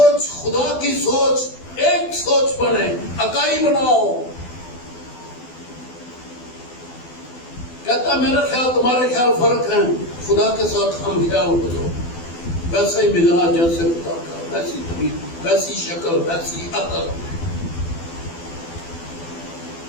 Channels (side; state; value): right; late; 12 ms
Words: خدا کی سوچ، ایک سوچ بنے، اکائی بناؤ۔ کہتا میرا خیال تمہارے خیال فرق ہیں، خدا کے ساتھ ہم خیال ہو جاؤ، ویسا ہی مزاج جیسے خدا کا، ویسی طبیعت، ویسی شکل، ویسی عقل۔